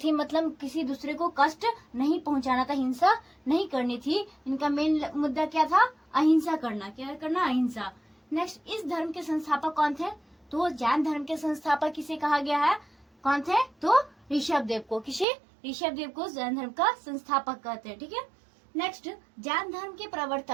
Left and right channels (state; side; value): drops out; left; at 15.2 s